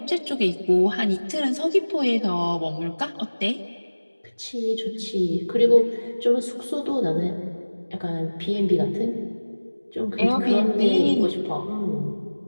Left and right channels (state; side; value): inverted; both; correlation -1.00